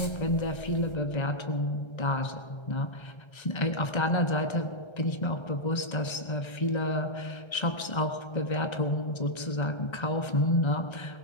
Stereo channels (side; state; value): right; late; 1.3 ms